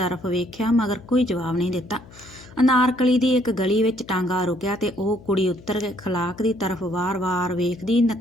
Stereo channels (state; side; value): noise; left; hum, 21 dB below the sound